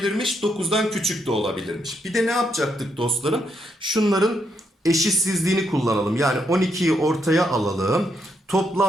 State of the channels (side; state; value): both; normal; correlation 0.78